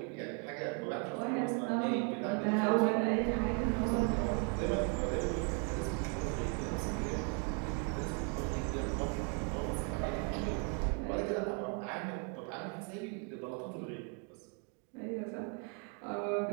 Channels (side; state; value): left; quieter; 38.7 dB